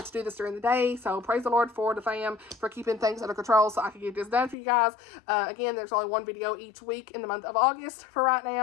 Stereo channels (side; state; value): right; drops out; at 4.5 s